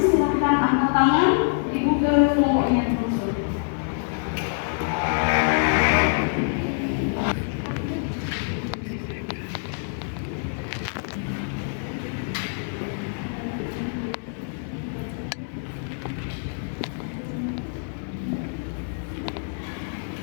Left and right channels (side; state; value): right; silent; 61 dB below the other